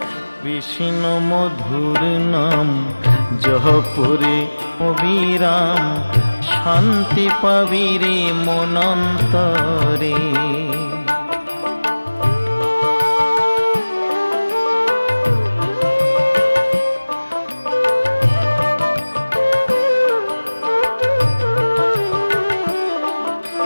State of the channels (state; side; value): inverted; both; correlation -1.00